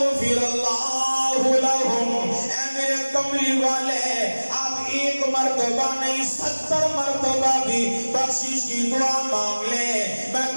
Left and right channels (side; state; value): both; inverted; correlation -1.00